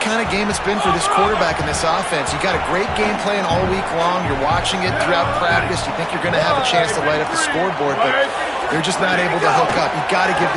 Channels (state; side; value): identical; both; correlation 1.00